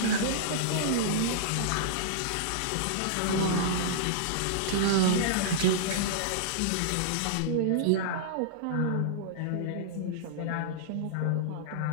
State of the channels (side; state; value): both; different; correlation -0.02